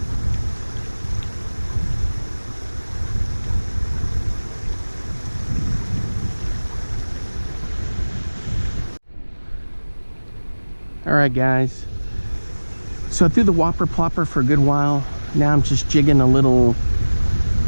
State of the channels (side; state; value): both; inverted; correlation -1.00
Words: Alright guys, so I threw the whopper plopper for a good while. Now I'm just jigging a little